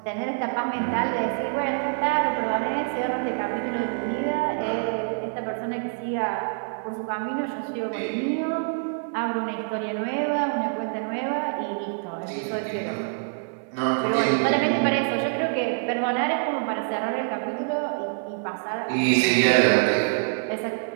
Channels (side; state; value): left; silent; digital silence